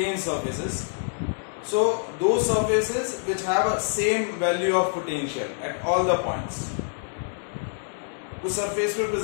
surfaces. So those surfaces which have a same value of potential at all the points. उस surface पे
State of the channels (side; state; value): right; silent; digital silence